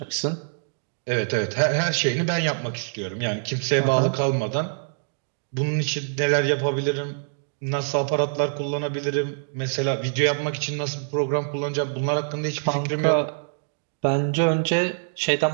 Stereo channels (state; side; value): silent; left; digital silence